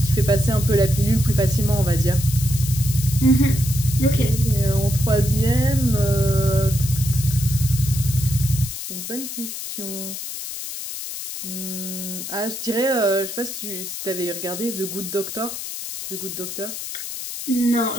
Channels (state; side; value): noise; left; hiss, 7 dB below the sound